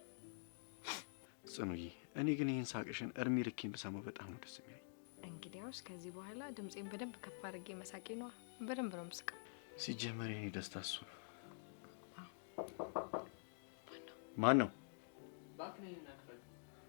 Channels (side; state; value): right; silent; digital silence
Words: ጽኑዬ። እኔ ግን ይህን ሳቅሽን እርሜ ልኬን ብሰማው በጣም ነው ደስ የሚለኝ። እንግዲያውስ ከዚህ በኋላ ድምጼን በደንብ ከፍ አድርጌ መሳቄ ነዋ። በደንብ ነው የምስቀው። ሲጀመር የኔ ደስታ እሱ ነው። ማን ነው?